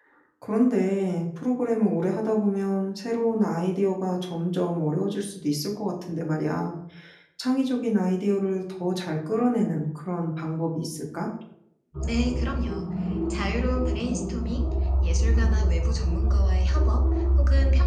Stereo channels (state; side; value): identical; both; correlation 1.00